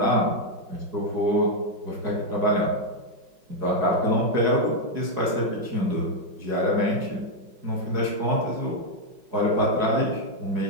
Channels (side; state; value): left; late; 5.5 ms